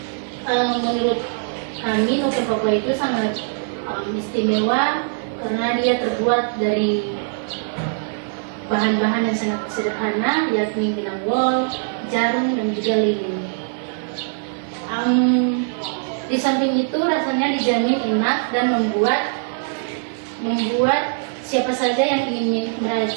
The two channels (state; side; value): silent; left; 57 dB below the other